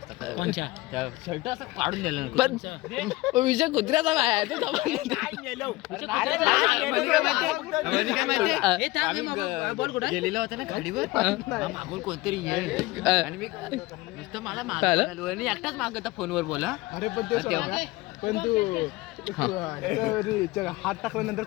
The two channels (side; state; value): right; quieter; 20.2 dB